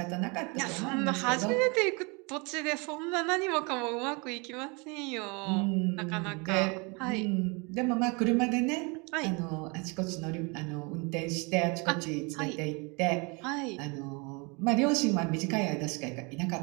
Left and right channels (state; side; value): quieter; left; 30.1 dB